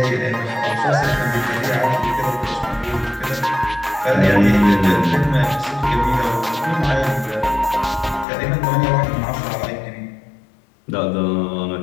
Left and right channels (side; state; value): right; drops out; at 8.2 s